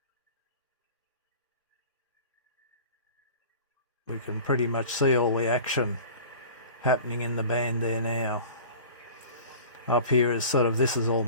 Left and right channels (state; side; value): inverted; both; correlation -0.41